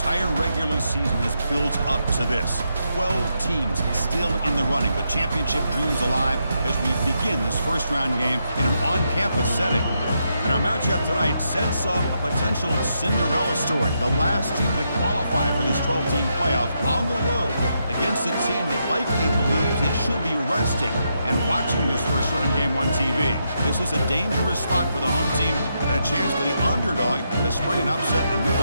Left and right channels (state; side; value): inverted; both; correlation -0.81